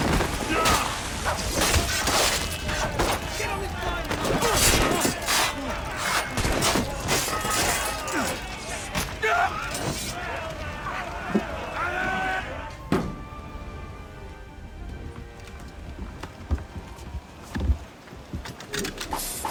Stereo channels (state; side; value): identical; both; correlation 1.00